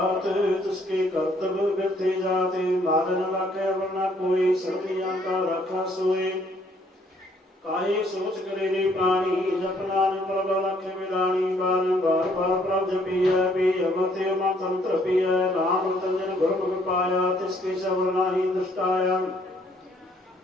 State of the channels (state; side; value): normal; both; correlation 0.65